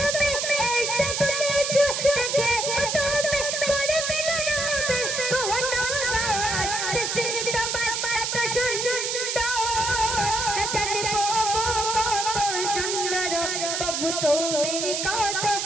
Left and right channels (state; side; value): noise; right; hiss, 1 dB below the sound